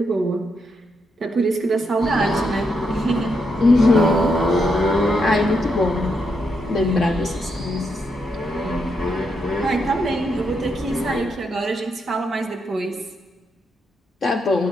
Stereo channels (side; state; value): both; normal; correlation 0.80